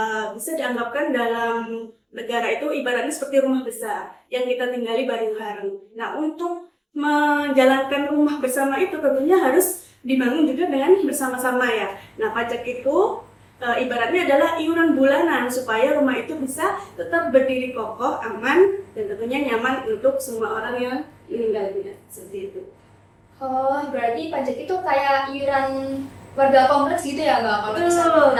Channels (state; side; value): identical; both; correlation 1.00